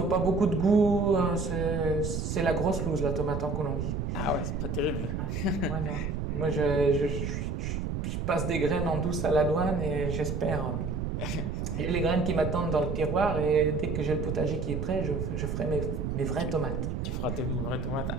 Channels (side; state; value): right; noise; rumble, 2 dB below the sound